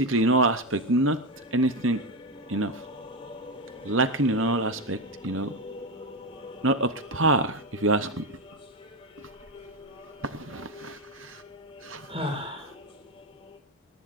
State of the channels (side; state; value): both; normal; correlation 0.12